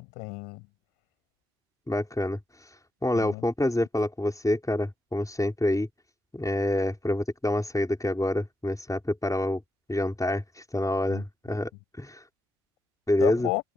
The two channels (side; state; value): both; normal; correlation 0.86